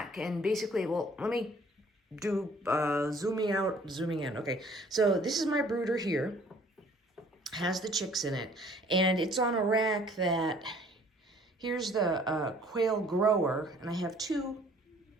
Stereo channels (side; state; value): both; normal; correlation 0.56